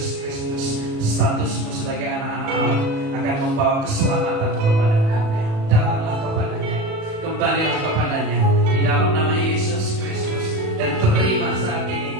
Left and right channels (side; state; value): left; late; 37 ms